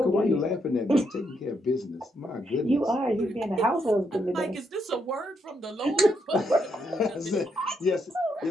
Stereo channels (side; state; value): both; normal; correlation 0.78